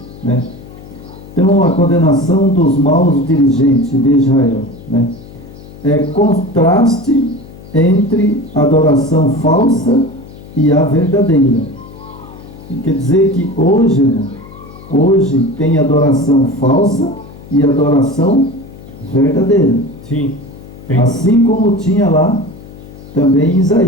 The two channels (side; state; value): left; noise; hum, 18 dB below the sound